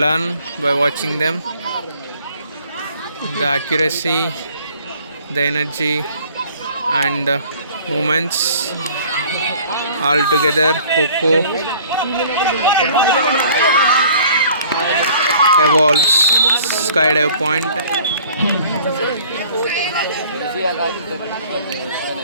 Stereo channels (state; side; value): inverted; both; correlation -0.52